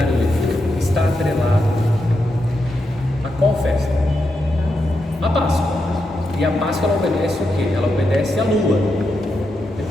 litúrgico está atrelado a qual festa? A Páscoa. E a Páscoa ela obedece o quê? Ela obedece à lua.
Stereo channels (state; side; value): normal; both; correlation 0.85